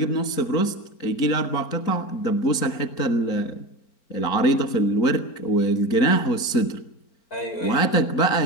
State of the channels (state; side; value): late; right; 4.4 ms